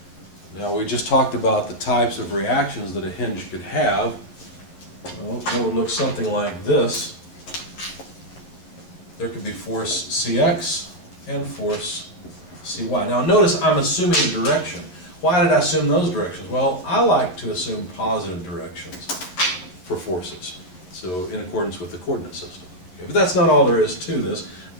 Now we just talked about the types of reactions that a hinge could have. Well, it would look something like this. There could be force Cx and force Cy. Now notice I'm assuming a direction. Why did I assume those directions? Well, I like to assume positive directions for forces, so in accordance with the coordinate system. Okay, but that's not all there is to this.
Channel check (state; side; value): late; right; 11 ms